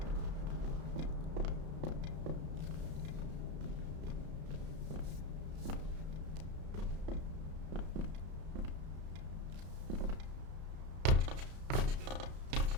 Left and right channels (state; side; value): late; left; 33 ms